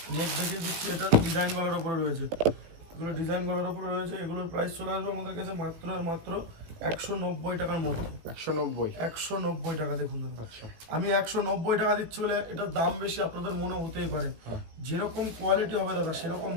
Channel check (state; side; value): late; left; 18 ms